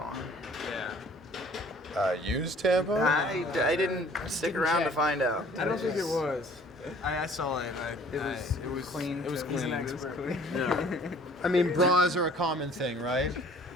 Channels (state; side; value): normal; both; correlation 0.53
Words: Yeah. Used tampon? I didn't stick around to find out. I don't think it was. I saw it. It was clean. It was He's clean. an It was expert. clean. Yeah. I mean, bras are a common thing, right?